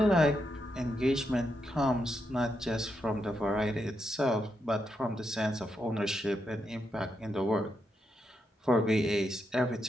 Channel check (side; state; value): both; normal; correlation 0.83